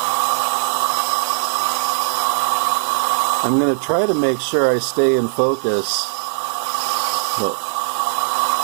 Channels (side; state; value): left; silent; 66 dB below the other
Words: I'm going to try to make sure I stay in focus, but